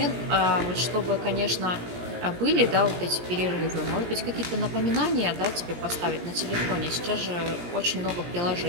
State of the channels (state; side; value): late; left; 17 ms